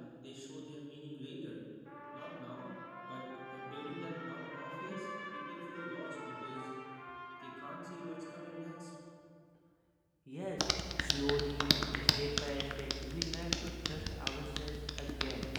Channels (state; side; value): identical; both; correlation 1.00